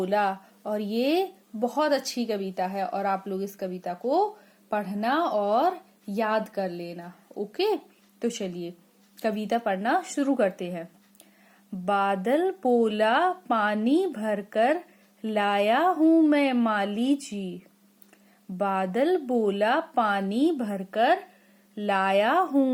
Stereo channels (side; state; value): both; identical; correlation 1.00